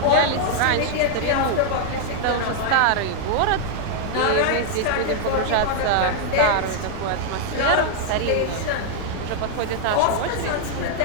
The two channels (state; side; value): different; both; correlation -0.01